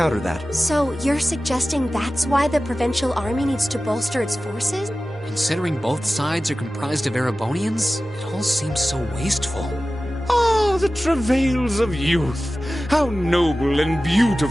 that? So you're suggesting that's why the Provincial Army needs to bolster its forces? Considering both sides are comprised of Erebonians, it all seems so wasteful. Ah, the travails of youth! How noble and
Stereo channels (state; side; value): normal; both; correlation 0.95